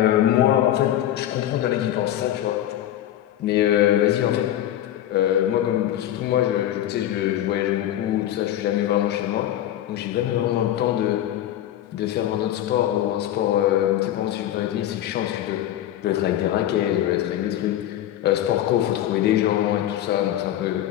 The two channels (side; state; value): right; quieter; 12.3 dB